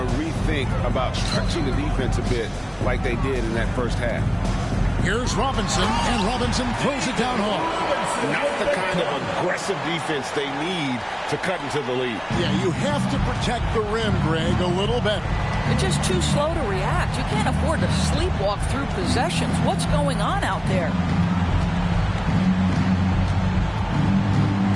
rethink about stretching the defense a bit like they did in that first half. Here's Robinson, and Robinson throws it down hard. Not the kind of aggressive defense they need to cut into the lead. Yeah, you have to protect the rim, Greg, a little better. They're just too slow to react. You can't afford to sleepwalk through possessions. What's going on out there?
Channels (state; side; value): identical; both; correlation 1.00